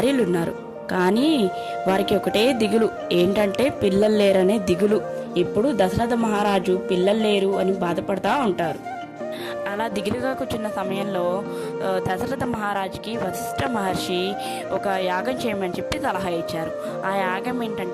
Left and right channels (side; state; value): both; identical; correlation 1.00